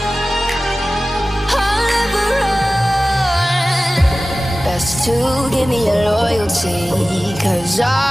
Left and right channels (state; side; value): normal; both; correlation 0.96